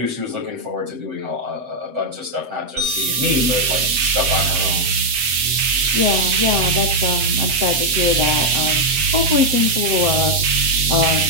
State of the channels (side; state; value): left; late; 7.8 ms